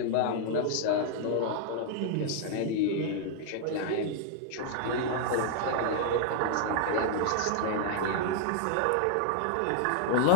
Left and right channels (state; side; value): different; both; correlation -0.01